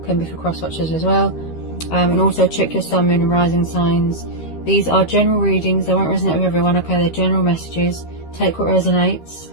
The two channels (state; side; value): late; right; 13 ms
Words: be for cross watchers as well. And also check your sun, moon and rising signs. These are general readings, they won't resonate with everyone, okay? They're general messages. Take what resonates,